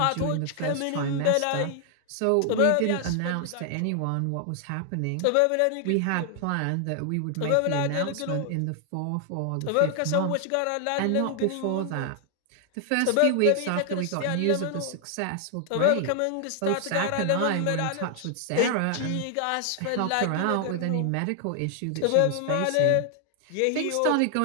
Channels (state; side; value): different; both; correlation 0.00